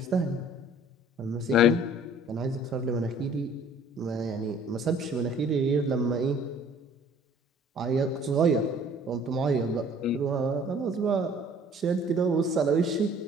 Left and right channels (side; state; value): both; normal; correlation 0.53